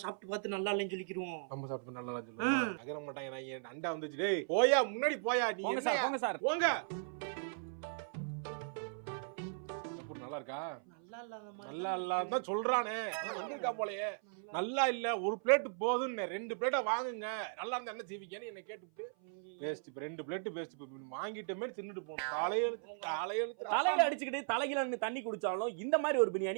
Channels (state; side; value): silent; left; 53 dB below the other